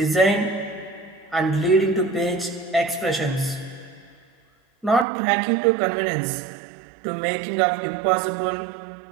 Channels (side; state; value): left; drops out; at 5.1 s